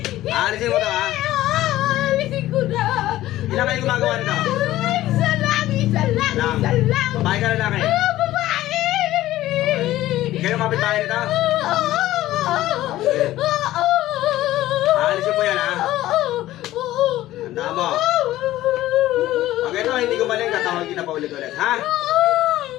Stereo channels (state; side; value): quieter; right; 15.1 dB